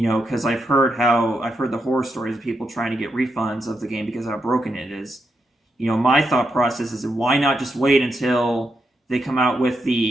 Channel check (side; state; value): both; normal; correlation 0.83